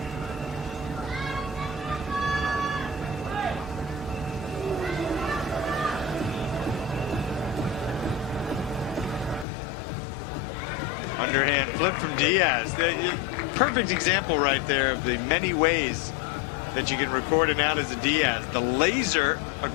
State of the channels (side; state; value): right; drops out; at 9.5 s